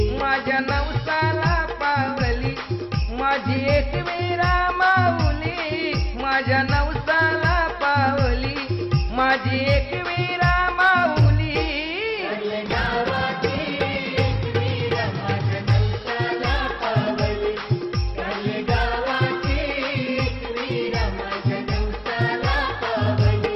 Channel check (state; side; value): identical; both; correlation 1.00